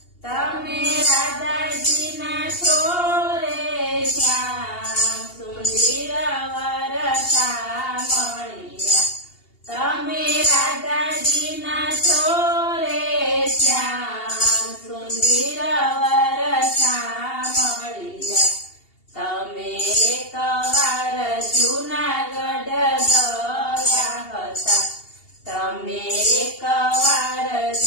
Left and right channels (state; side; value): late; right; 2.8 ms